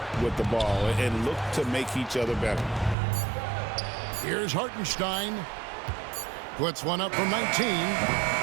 with the ball and look to make each other better. Here's Hartenstein. Puts one up from 19.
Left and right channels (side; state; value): left; drops out; at 3.0 s